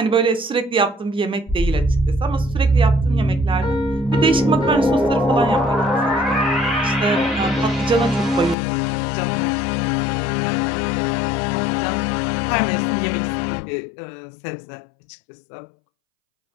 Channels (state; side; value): drops out; right; at 8.6 s